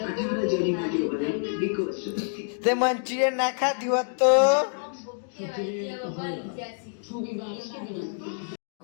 તે મંચુરિયન ના ખાધી હોત તો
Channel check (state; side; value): silent; right; digital silence